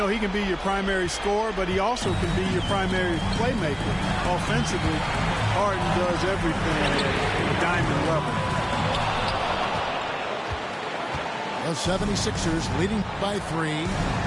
he can be your primary scorer, but he also can be your primary playmaker. Offensively, Harden does everything at a diamond level. The 76ers leading by 3.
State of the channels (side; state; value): both; identical; correlation 1.00